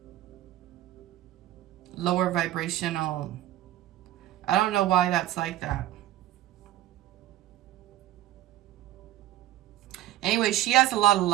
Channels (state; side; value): quieter; left; 14.0 dB